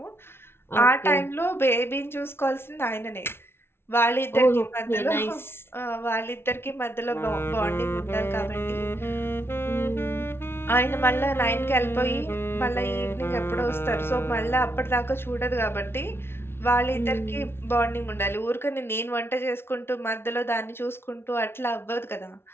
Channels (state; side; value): late; right; 0.12 ms